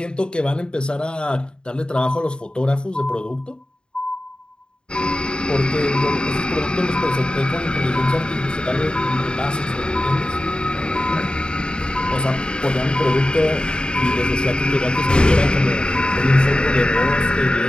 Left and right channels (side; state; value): right; late; 0.050 ms